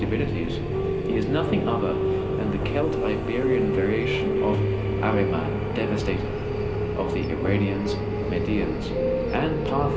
he is nothing other than the Celt-Iberian variation of Ahriman, Devastator, of the Iranians, Medians, and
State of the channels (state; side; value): identical; both; correlation 1.00